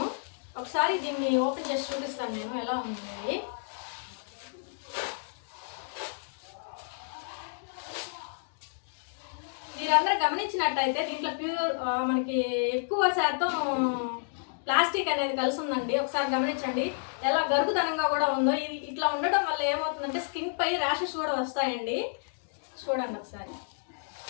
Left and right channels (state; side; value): silent; right; digital silence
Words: ఒకసారి దీన్ని ఓపెన్ చేసి చూపిస్తాను నేను ఎలా ఉంది ఇది. మీరందరూ గమనించినట్టయితే దీంట్లో ప్యూర్ మనకి ఎక్కువ శాతం ప్లాస్టిక్ అనేది కలిసి ఉందండి. ఒకసారి గమనించండి ఎలా గరుగుదనంగా కూడా ఉందో. ఇది ఇట్లా ఉండడం వల్ల ఏమవుతుందంటే స్కిన్ పై ర్యాషెస్ కూడా వస్తాయండి. చూడండి ఒకసారి.